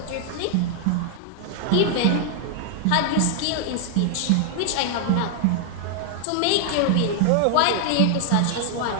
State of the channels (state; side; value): different; both; correlation 0.00